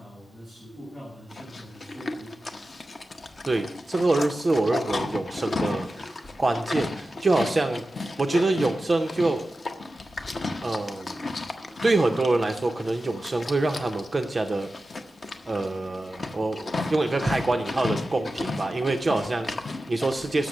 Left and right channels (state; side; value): normal; both; correlation 0.94